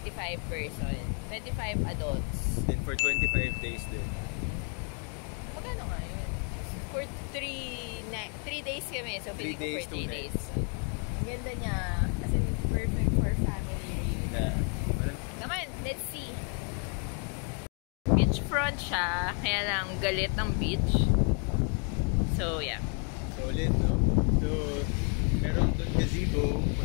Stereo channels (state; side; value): quieter; right; 39.4 dB